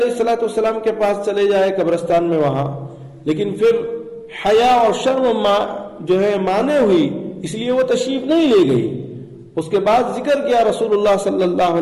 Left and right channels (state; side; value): identical; both; correlation 1.00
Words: الصلوۃ والسلام کے پاس چلے جائے قبرستان میں وہاں، لیکن پھر حیا اور شرم جو ہے مانے ہوئی، اس لیے وہ تشریف نہیں لے گئی. اس کے بعد ذکر کیا رسول اللہ صلی اللہ